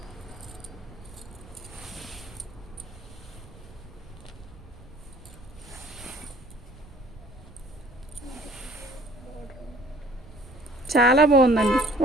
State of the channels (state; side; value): noise; right; rumble, 20 dB below the sound